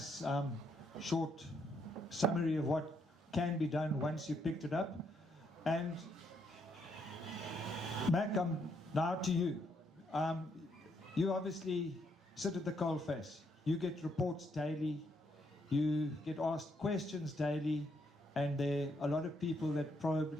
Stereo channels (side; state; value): both; normal; correlation 0.74